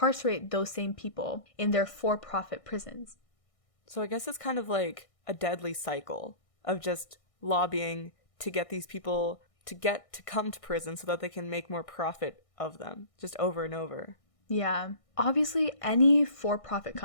those same people in their for-profit prisons. So I guess it's kind of like a deadly cycle of just lobbying to get these people to come to prison so that they can make more profit of them, just over and over. Yeah. Obviously, any for-profit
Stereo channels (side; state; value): right; late; 1.6 ms